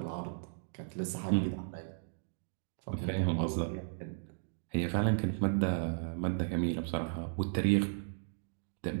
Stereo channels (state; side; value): silent; left; digital silence